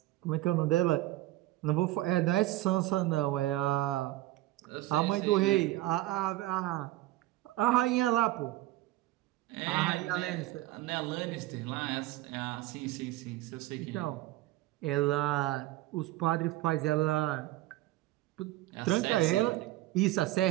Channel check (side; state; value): left; quieter; 16.6 dB